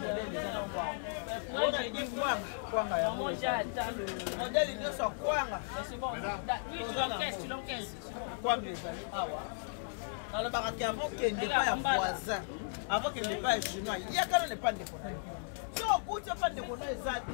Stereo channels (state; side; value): silent; right; digital silence